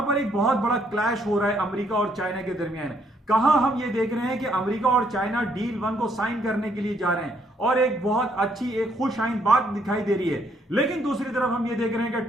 पर एक बहुत बड़ा क्लैश हो रहा है अमेरिका और चाइना के दरमियान। कहां हम ये देख रहे हैं कि अमेरिका और चाइना डील 1 को साइन करने के लिए जा रहे हैं और एक बहुत अच्छी एक खुश आइंद बात दिखाई दे रही है, लेकिन दूसरी तरफ हम ये देख रहे हैं कि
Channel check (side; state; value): both; normal; correlation 0.70